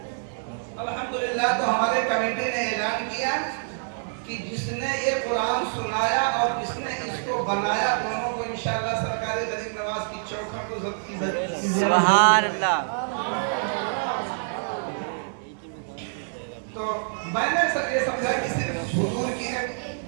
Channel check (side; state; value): left; silent; digital silence